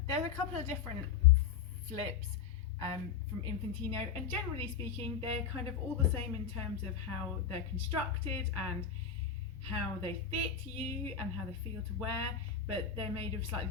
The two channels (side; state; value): right; quieter; 7.0 dB